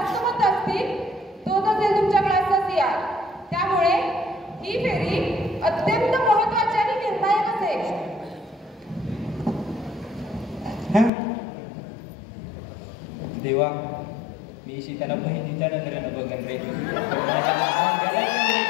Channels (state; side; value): drops out; right; at 11.1 s